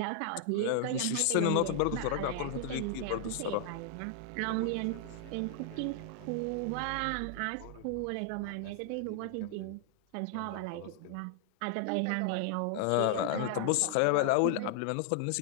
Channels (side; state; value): both; different; correlation -0.01